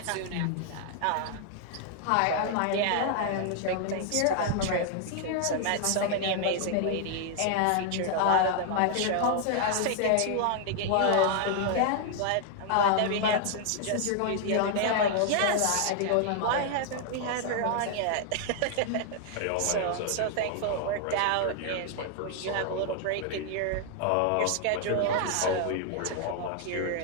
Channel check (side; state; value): both; different; correlation 0.00